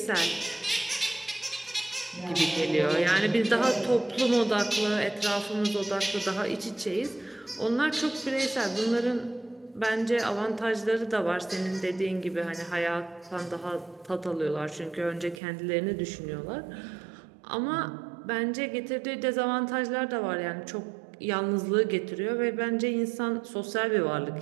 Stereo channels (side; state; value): left; drops out; at 15.4 s